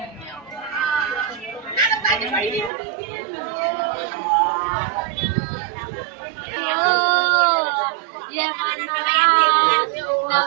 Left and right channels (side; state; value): left; drops out; at 2.7 s